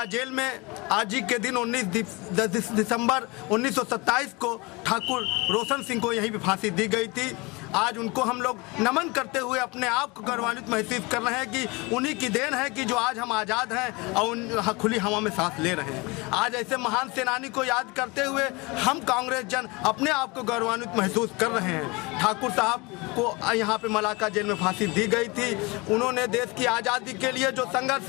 जेल में आज ही के दिन 19 दिसंबर 1927 को ठाकुर रोशन सिंह को यहीं पे फांसी दी गई थी। आज उनको हम लोग नमन करते हुए अपने आप को गौरवान्वित महसूस कर रहे हैं कि उन्हीं की देन है कि जो आज हम आज़ाद हैं और खुली हवा में सांस ले रहे हैं। आज ऐसे महान सेनानी को याद करते हुए हम कांग्रेस जन अपने आप को गौरवान्वित महसूस कर रहे हैं। ठाकुर साहब को यहाँ पे मलाका जेल में फांसी दी गई थी। उन्होंने देश की आज़ादी के लिए जो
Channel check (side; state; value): right; quieter; 25.7 dB